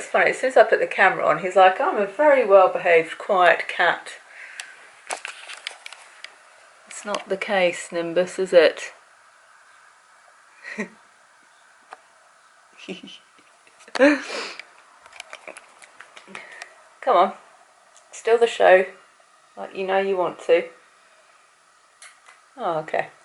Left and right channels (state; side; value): identical; both; correlation 1.00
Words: funny. As soon as I put the camera on, he's like, I'm a very well-behaved, quiet cat. It's not the case, Nimbus, is it? Come on. Still the show. Like you know you want to. Oh, okay.